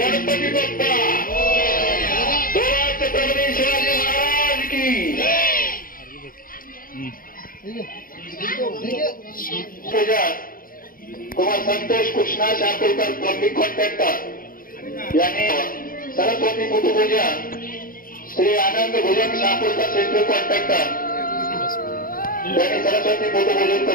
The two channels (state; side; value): late; right; 0.41 ms